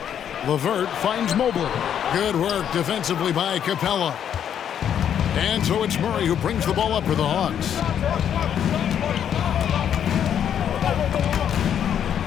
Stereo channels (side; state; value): right; quieter; 9.1 dB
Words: LeVert finds Mobley. Good work defensively by Capella. And so it's Murray who brings the ball up for the Hawks.